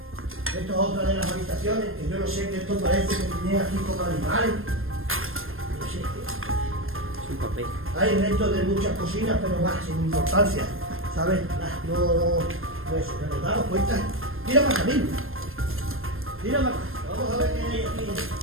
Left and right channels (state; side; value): late; left; 0.60 ms